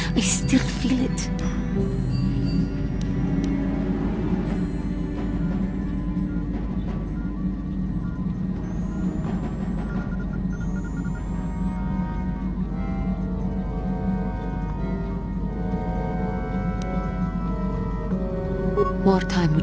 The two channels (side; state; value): both; identical; correlation 1.00